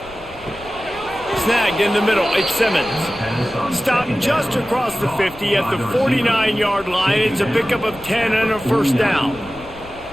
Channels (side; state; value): left; noise; rumble, 20 dB below the sound